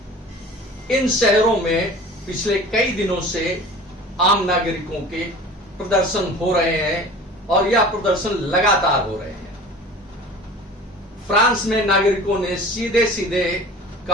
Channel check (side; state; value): both; normal; correlation 0.40